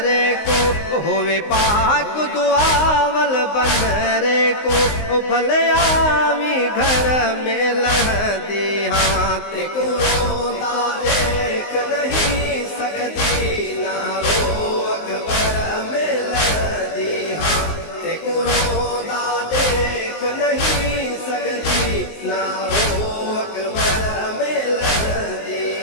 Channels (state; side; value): late; right; 19 ms